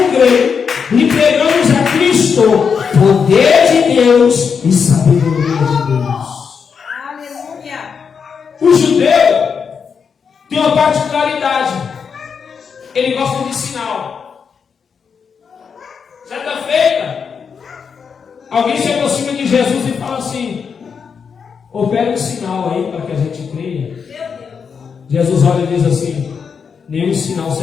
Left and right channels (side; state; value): right; quieter; 6.3 dB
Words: gregos, lhe pregamos a Cristo, poder de Deus Deus e sabedoria de Deus. Aleluia. O judeu tem uma particularidade. Ele gosta de sinal. Certa feita, alguém se aproxima de Jesus e fala assim: opera um sinal aí para que a gente creia. Jesus olha e diz assim: nenhum sinal